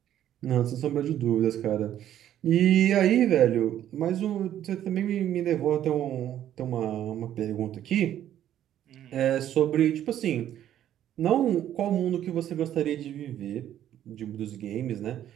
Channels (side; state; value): left; quieter; 11.3 dB